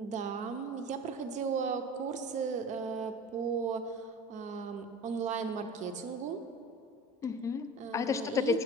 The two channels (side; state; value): both; normal; correlation 0.37